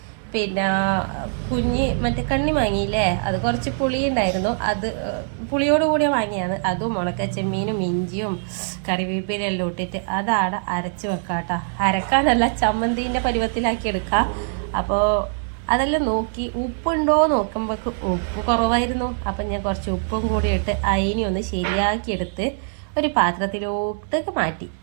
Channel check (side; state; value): left; silent; 64 dB below the other